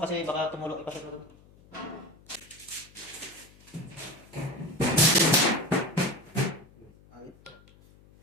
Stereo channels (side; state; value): left; noise; hum, 25 dB below the sound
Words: baka tumulok. Ipashot mo to.